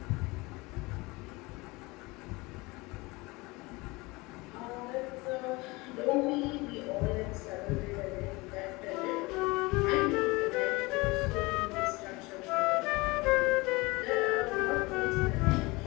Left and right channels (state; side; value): quieter; right; 23.8 dB